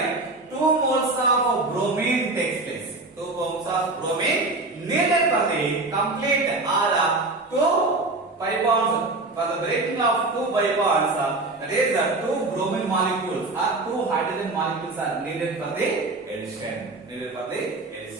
2 moles of bromine takes place. 2 moles of bromine needed for the complete or 2 pi bonds. For the breaking of 2 pi bonds, that is 2 bromine molecules or 2 hydrogen molecules are needed for the addition.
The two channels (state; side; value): quieter; left; 3.2 dB